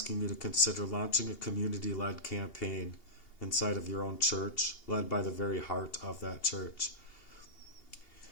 you to consider launching a community-led campaign inside of your own church, led by the very heart of that church.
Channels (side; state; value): right; late; 2.8 ms